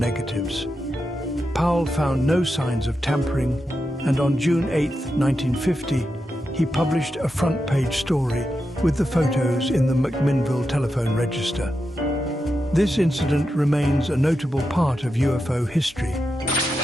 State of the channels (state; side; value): normal; both; correlation 0.88